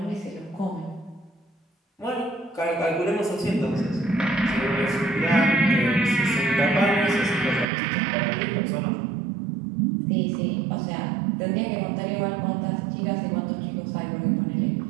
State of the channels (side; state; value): left; drops out; at 7.7 s